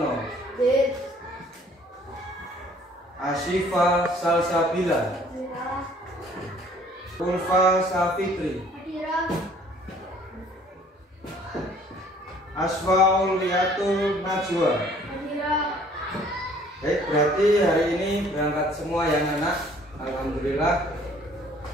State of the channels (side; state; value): both; normal; correlation 0.57